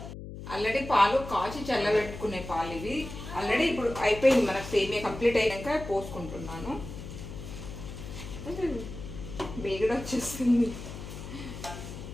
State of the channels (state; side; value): noise; left; hum, 11 dB below the sound